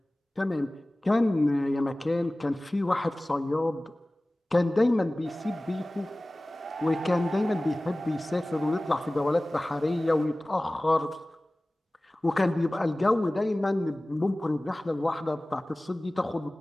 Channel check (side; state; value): both; normal; correlation 0.98